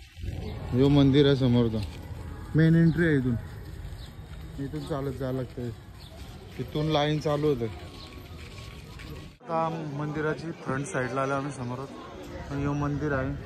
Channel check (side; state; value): both; identical; correlation 1.00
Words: जो मंदिर आहे समोरचा मेन एंट्री आहे. इथून चालत जायला लागतंय. इथून लाईन चालू होते. आता मंदिराची फ्रंट साईडला आलो आम्ही समोरच. हे मंदिर आहे.